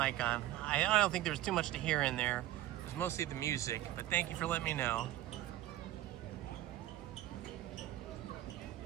on. I don't think there's too much to hear in there. It was mostly the music, but thank you for letting me know.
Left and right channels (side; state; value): left; quieter; 14.5 dB